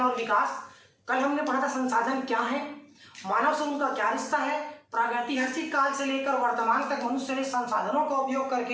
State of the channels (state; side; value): identical; both; correlation 1.00